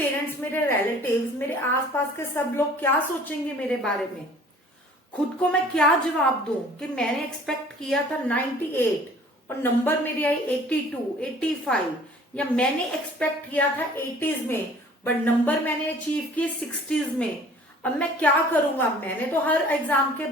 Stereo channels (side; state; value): both; normal; correlation 0.51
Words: मेरे रिलेटिव्स, मेरे आसपास के सब लोग क्या सोचेंगे मेरे बारे में। खुद को मैं क्या जवाब दूं कि मैंने एक्सपेक्ट किया था 98 और नंबर मेरी आई 82, 85, या मैंने एक्सपेक्ट किया था 80s में बट नंबर मैंने अचीव किए 60s में। अब मैं क्या करूंगा। मैंने तो हर एग्जाम के